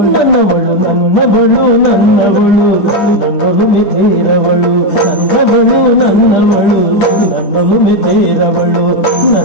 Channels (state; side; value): late; right; 11 ms